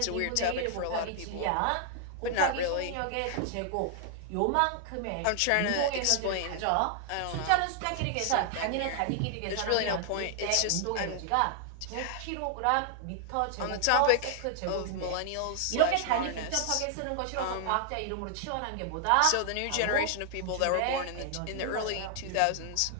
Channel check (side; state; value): both; different; correlation 0.00